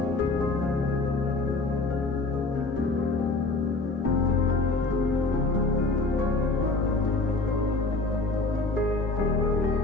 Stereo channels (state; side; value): quieter; right; 3.4 dB